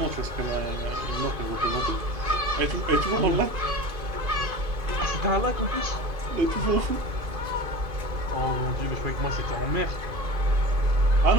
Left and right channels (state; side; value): late; left; 2.5 ms